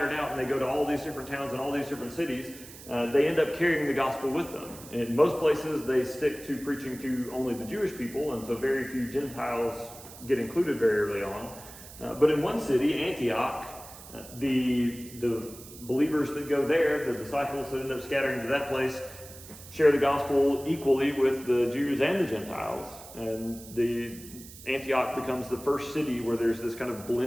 out and they go to all these different towns and all these different cities, they end up carrying the gospel with them. In most places, they stick to preaching to only the Jewish people, and so very few Gentiles get included very early on. But in one city, Antioch, the believers that go there, the disciples that end up scattering to that place, share the gospel equally with the Jews and the Gentiles. And the Antioch becomes the first city where there's this kind of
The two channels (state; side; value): noise; right; hiss, 17 dB below the sound